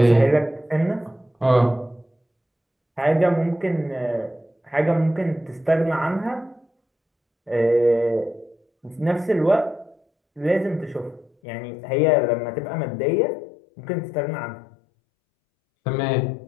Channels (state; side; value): drops out; right; at 11.3 s